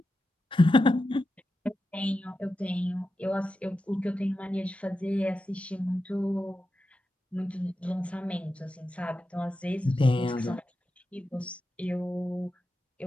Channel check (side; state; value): both; normal; correlation 0.90